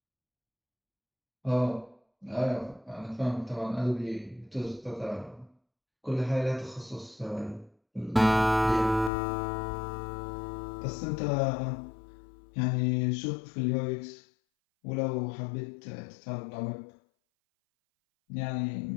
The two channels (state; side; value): drops out; right; at 9.1 s